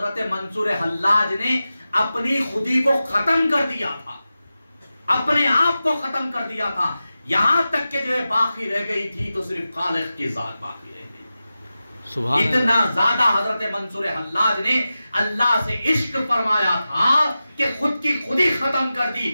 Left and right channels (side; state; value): both; inverted; correlation -0.94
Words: منصور حلاج نے اپنی خودی کو ختم کر دیا تھا، اپنے آپ کو ختم کر دیا تھا، یہاں تک کہ جو ہے باقی رہ گئی تھی تو صرف خالق کی ذات باقی رہ گئی۔ اتنا زیادہ حضرت منصور حلاج نے اللہ سے عشق فرمایا تھا کہ خود کی خودی ختم کر دی،